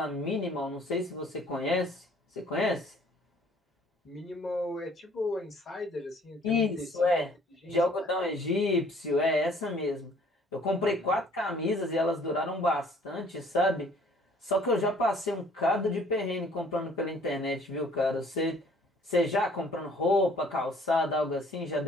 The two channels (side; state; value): both; normal; correlation 0.57